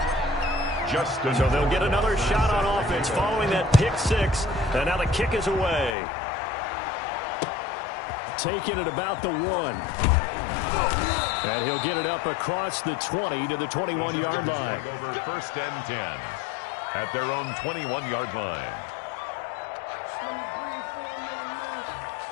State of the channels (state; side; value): drops out; right; at 6.0 s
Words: So they'll get another shot on offense following that pick six. And now the kick is away. Taking it about the 1. And he'll get it up across the 20 to the 21-yard line. Over 1st and 10 at their own 21-yard line.